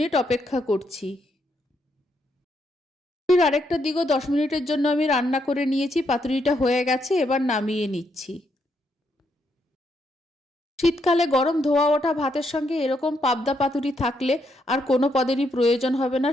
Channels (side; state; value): both; normal; correlation 0.77